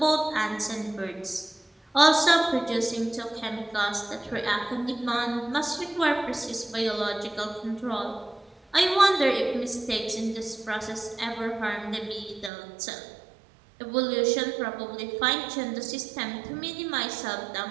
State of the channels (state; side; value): drops out; left; at 12.5 s